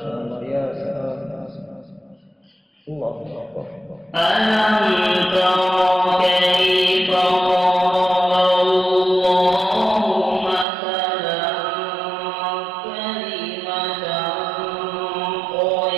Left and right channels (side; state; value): left; drops out; at 10.7 s